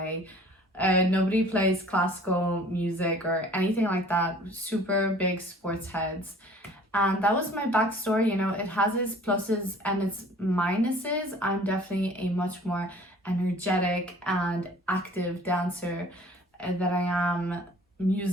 Nobody plays classical music or anything like that. Super big sports heads. And that was my backstory. You know, it has its pluses and its minuses. I'm definitely a much more energetic and active dancer than I am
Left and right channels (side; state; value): both; normal; correlation 0.50